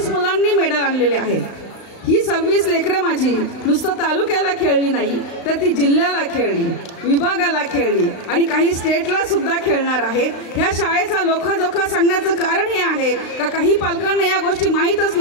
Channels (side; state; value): right; late; 35 ms